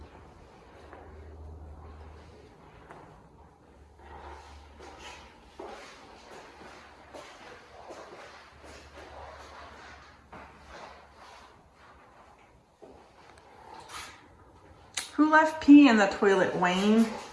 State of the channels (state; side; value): identical; both; correlation 1.00